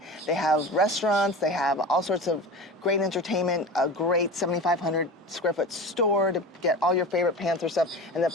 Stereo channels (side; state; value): both; normal; correlation 0.32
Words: They have restaurants, they have all sorts of great entertainment, a great 7,500 square foot store to get all your favorite Panther stuff. And the